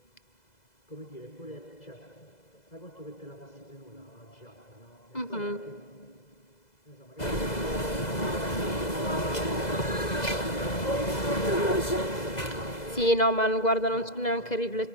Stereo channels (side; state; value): right; late; 2.0 ms